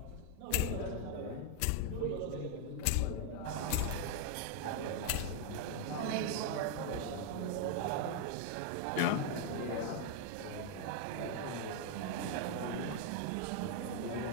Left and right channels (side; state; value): both; different; correlation 0.00